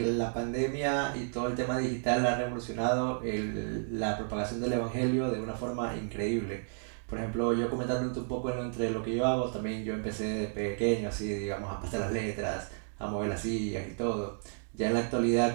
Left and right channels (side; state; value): left; silent; digital silence